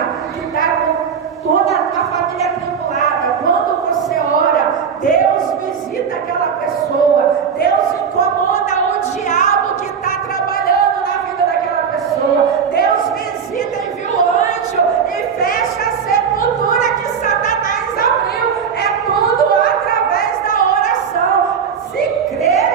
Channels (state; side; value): quieter; left; 6.8 dB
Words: que está com toda a família atribulada, quando você ora, Deus visita aquela pessoa. Deus incomoda o diabo que está trabalhando na vida daquela pessoa. Deus visita, envia o anjo e fecha a sepultura que Satanás abriu. É tudo através da oração. Se